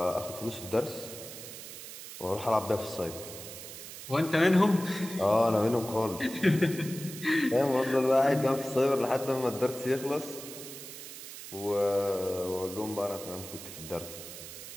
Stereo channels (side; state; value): right; noise; hiss, 12 dB below the sound